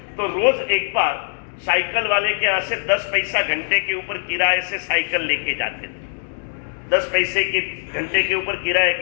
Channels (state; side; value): silent; right; digital silence